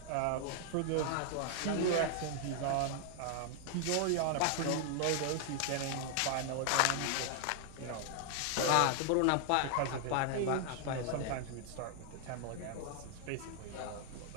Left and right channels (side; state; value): both; different; correlation 0.00